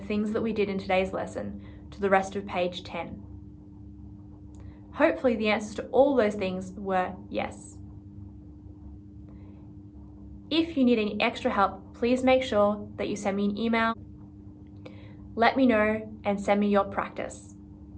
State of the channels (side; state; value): both; identical; correlation 1.00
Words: that we did in today's lesson to the rest of page 10? Hopefully the answers to all those things were yes. If you need any extra help, please make sure that you send me an email. Let me know and send me your practice.